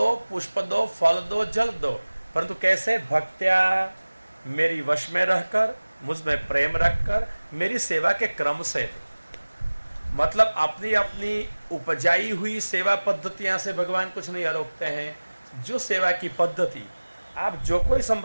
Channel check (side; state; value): both; inverted; correlation -1.00